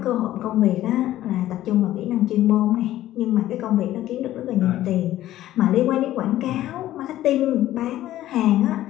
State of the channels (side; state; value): right; quieter; 14.0 dB